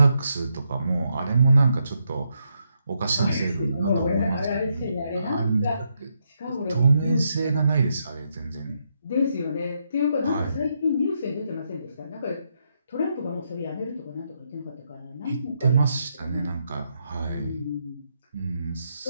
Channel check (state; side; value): inverted; both; correlation -0.79